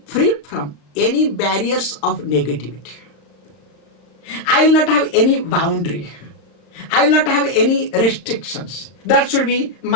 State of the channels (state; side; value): late; right; 36 ms